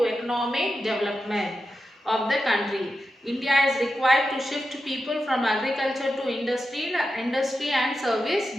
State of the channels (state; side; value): normal; both; correlation 0.90